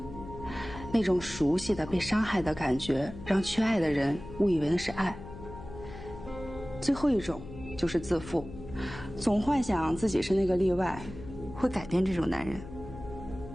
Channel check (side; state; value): left; noise; hum, 13 dB below the sound